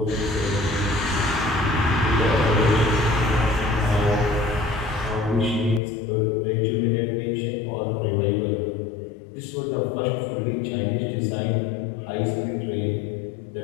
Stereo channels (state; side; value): drops out; right; at 5.8 s